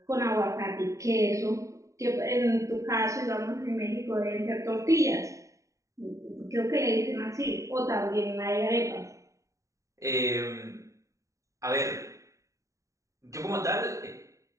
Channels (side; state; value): left; late; 0.15 ms